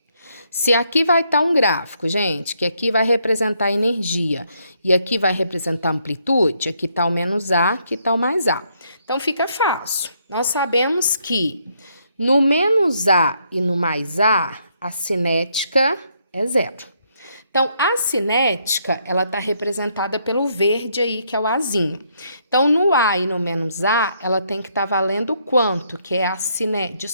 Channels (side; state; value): both; inverted; correlation -0.73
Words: Se aqui vai estar um gráfico, gente, que aqui vai representar a energia e aqui vai representar a amplitude, aqui está o menos A, aqui está o mais A. Então, fica fácil. Nós sabemos que no menos A e no mais A, a cinética é 0. Então, a cinética, ela está representada pelo verde aí, que é o Azinho. Então, no A e no menos A, ela tem que estar valendo quanto? Que é a cinética.